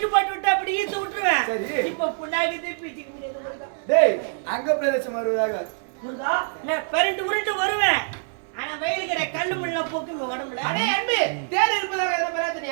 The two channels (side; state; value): left; silent; 62 dB below the other